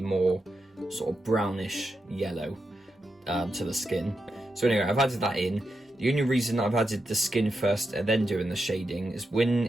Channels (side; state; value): both; normal; correlation 0.86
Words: sort of brownish yellow to the skin. So anyway, I've added that in. The only reason I've added the skin first and then doing the shading is when